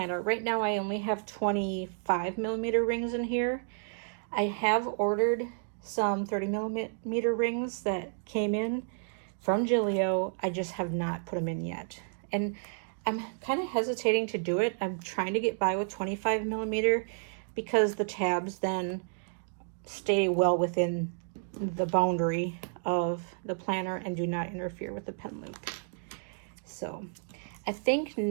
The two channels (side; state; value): left; silent; digital silence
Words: Right now, I only have 25mm rings in here. I have ordered some 30mm rings that came in from Gillio. I just have not put them in yet. And I'm kind of hesitating to do it. I'm trying to get by with 25mm because the tabs then stay well within the boundary of the planner and do not interfere with the pen loop. So I think